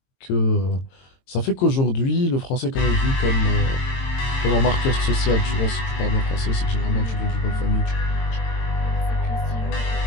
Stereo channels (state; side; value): late; right; 22 ms